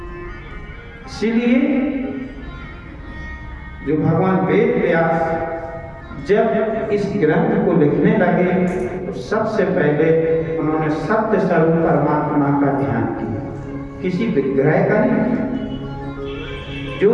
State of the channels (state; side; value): identical; both; correlation 1.00